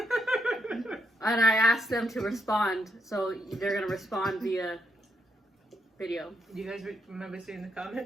and I asked them to respond, so they're gonna respond via video. Do you guys remember seeing the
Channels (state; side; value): normal; both; correlation 0.80